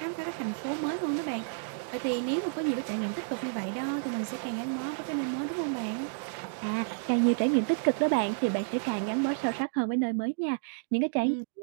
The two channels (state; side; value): silent; left; digital silence